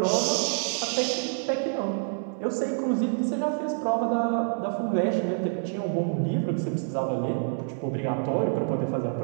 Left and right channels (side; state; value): left; silent; 60 dB below the other